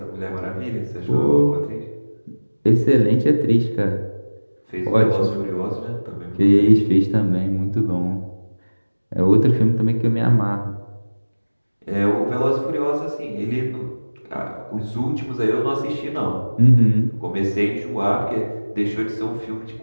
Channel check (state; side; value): inverted; both; correlation -1.00